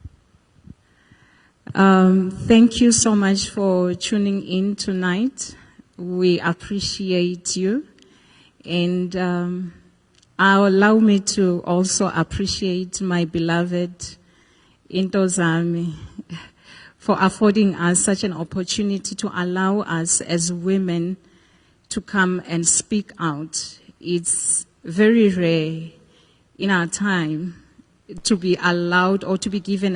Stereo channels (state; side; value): identical; both; correlation 1.00